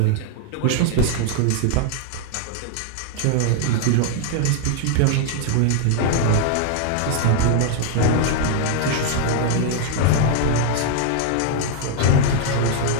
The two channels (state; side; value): different; both; correlation -0.01